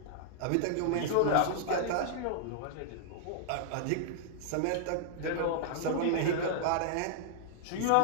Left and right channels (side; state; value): both; different; correlation -0.01